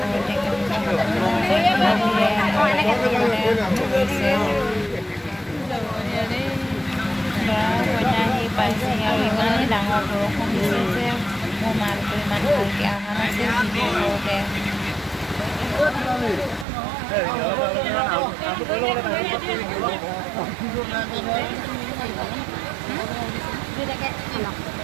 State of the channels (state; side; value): drops out; left; at 16.7 s